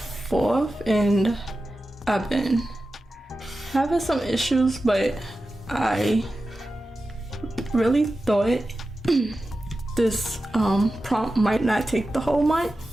4th and I've been having some issues, but I really thought this prompt might not take the whole month,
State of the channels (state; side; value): normal; both; correlation 0.93